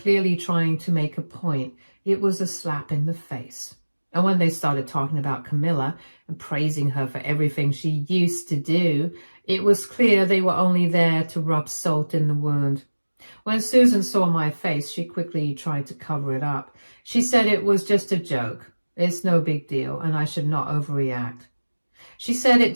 trying to make a point. It was a slap in the face. And when they started talking about Camilla and praising her for everything she used to do, it was clear they were only there to rub salt in the wound. When Susan saw my face, she quickly tried to cover it up. She said it was just a joke. It's no big deal, and I should not overreact. She said it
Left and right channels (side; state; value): both; inverted; correlation -1.00